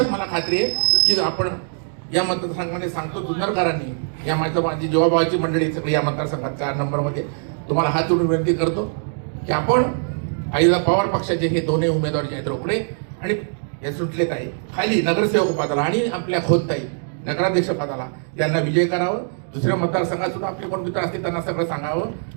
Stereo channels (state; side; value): silent; left; digital silence